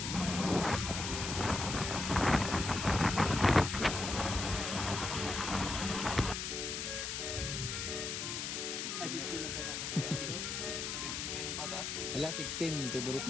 Ay, 16 lang tayo. 10 patas. Wala, 16. Favorite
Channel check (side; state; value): left; noise; hiss, 3 dB below the sound